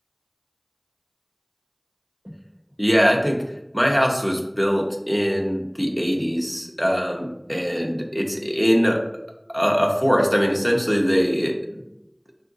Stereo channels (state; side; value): identical; both; correlation 1.00